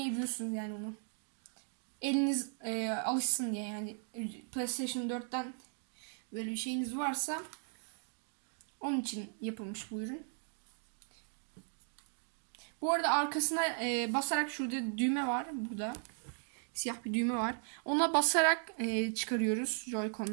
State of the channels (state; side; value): silent; left; 53 dB below the other